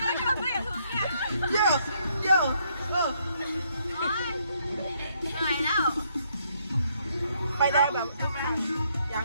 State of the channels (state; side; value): inverted; both; correlation -0.72